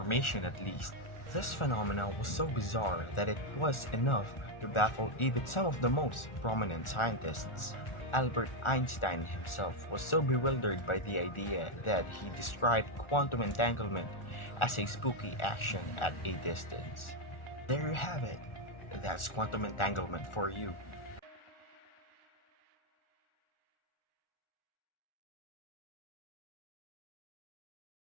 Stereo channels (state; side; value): late; right; 1.4 ms